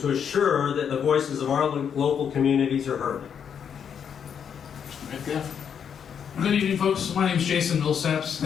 assure that the voices of our local communities are heard. Good evening, folks. My name is Jason Millsaps.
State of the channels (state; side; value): quieter; right; 7.7 dB